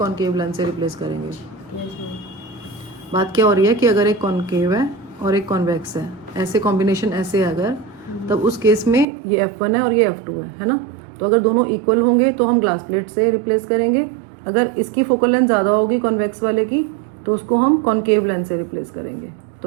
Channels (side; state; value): left; drops out; at 9.1 s